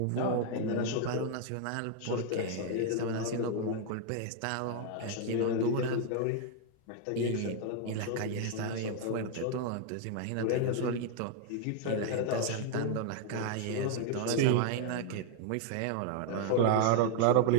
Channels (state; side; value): different; both; correlation 0.00